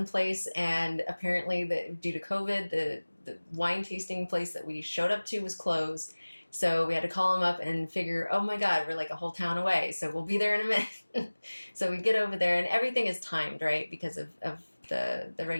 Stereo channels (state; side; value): inverted; both; correlation -1.00